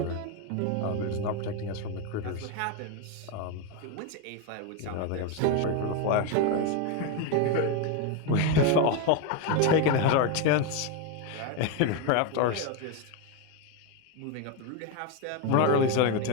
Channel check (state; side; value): different; both; correlation 0.02